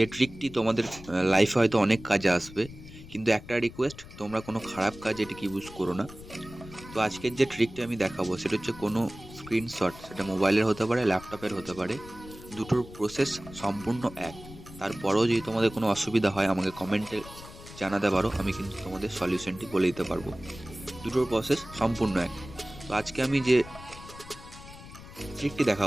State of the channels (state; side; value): noise; left; rumble, 16 dB below the sound